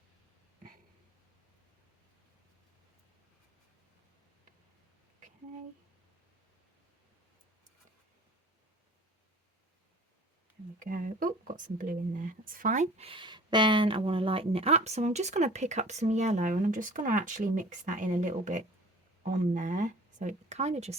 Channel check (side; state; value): both; normal; correlation 0.46